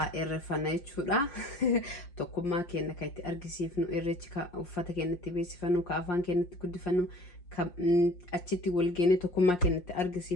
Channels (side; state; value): right; late; 5.6 ms